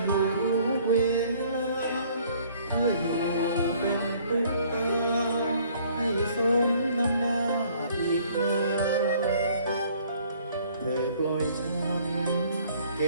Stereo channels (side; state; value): both; inverted; correlation -0.59